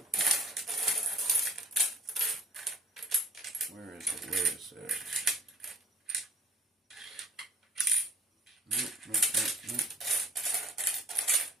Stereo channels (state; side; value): normal; both; correlation 0.53